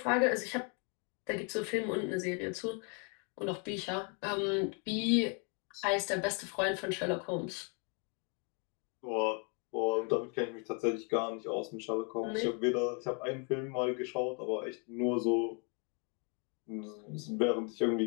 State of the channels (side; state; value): right; quieter; 37.1 dB